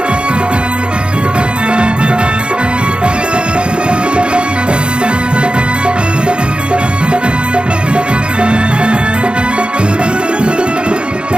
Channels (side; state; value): left; late; 0.054 ms